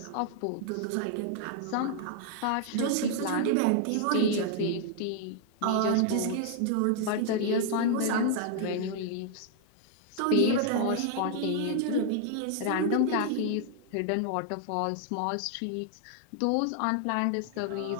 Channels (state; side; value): different; both; correlation 0.00